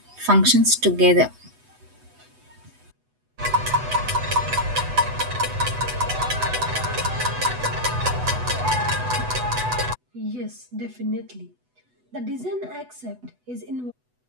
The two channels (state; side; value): late; left; 8.0 ms